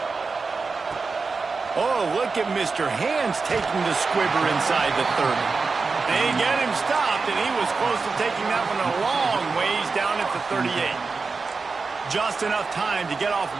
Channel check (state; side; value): quieter; left; 4.4 dB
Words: Oh, look at Mr. Hands taking the squibber inside the 30. They get him stopped, and he was close to taking that one a long ways down at the 38. Just enough time to get off